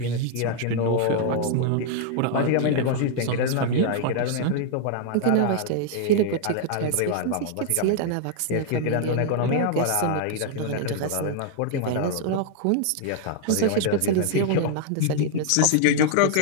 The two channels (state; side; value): different; both; correlation -0.01